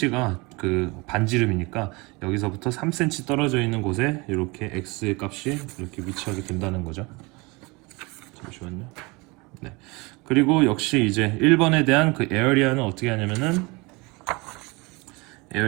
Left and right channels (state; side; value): quieter; left; 25.9 dB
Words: 그 반지름이니까 여기서부터 3cm 떨어져 있는 곳에 이렇게 x의 값이 이렇게 위치하게 된다는 거죠. 잠시만요. 네. 그리고 역시 이제 1번에 대한 그 에어리아는 어떻게 하냐면은